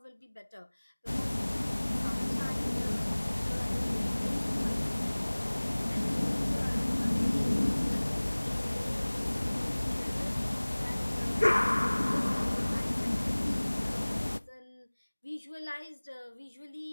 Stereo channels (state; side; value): inverted; both; correlation -1.00